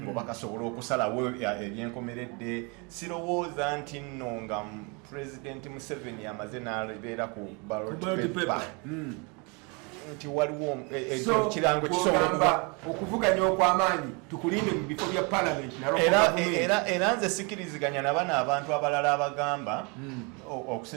ng'oba kasobola okusalawo ebyenkomeredde sirowooza nti nno nga Pulezidenti Museveni amaze n'abeera ku ballot paper nti waliwo kirango kisobola okuvuganya okw'amaanyi tukulinde mu bifo bya palamenti era nze sikiriziganya nabana abantu abalala abagamba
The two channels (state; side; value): quieter; left; 31.3 dB